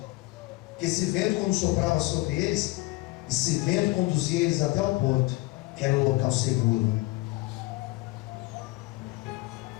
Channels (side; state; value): right; quieter; 20.9 dB